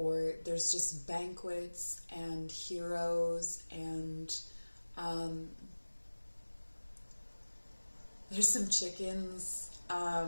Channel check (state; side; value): inverted; both; correlation -1.00